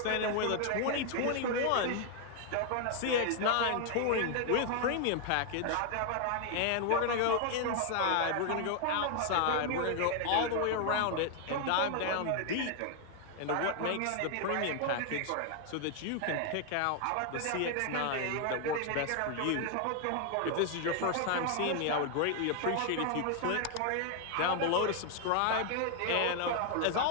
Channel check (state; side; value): different; both; correlation 0.00